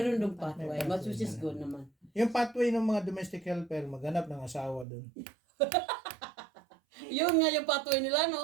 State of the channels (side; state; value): left; drops out; at 4.9 s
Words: dong pathway, May which is pathway good naman. Yung pathway ng mga domestic helper, maghanap ng asawa doon. Yun nga yung pathway nila,